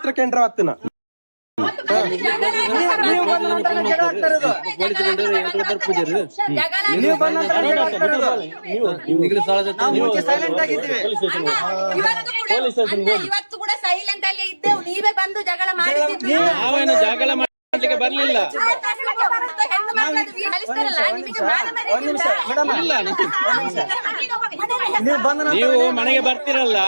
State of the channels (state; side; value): inverted; both; correlation -1.00